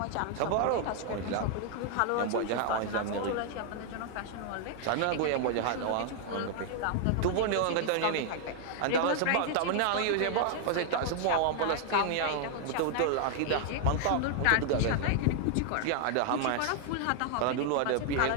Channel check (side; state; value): both; different; correlation 0.00